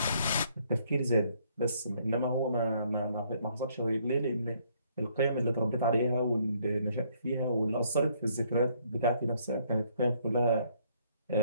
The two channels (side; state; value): both; inverted; correlation -0.67